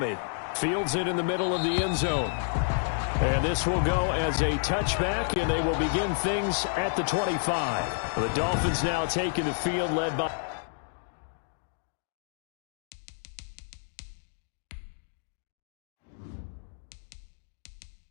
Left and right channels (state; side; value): silent; right; digital silence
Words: Fields it in the middle of the end zone. And this will go as a touchback, and they will begin things at the 25. The Dolphins now taking the field, led by...